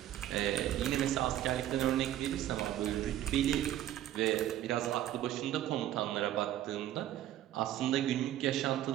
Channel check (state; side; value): quieter; left; 12.5 dB